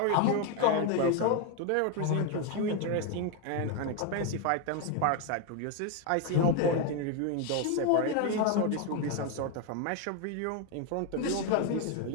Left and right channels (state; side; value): different; both; correlation 0.01